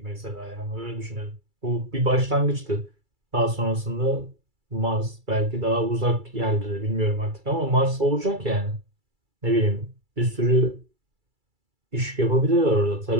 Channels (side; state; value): left; late; 2.3 ms